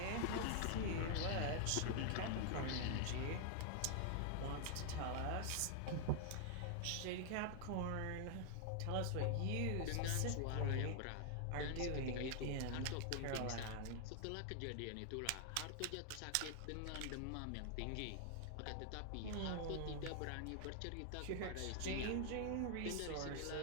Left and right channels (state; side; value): different; both; correlation 0.00